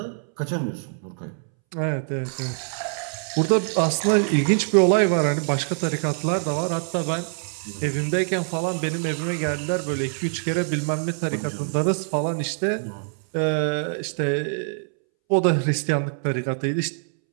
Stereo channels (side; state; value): left; silent; 62 dB below the other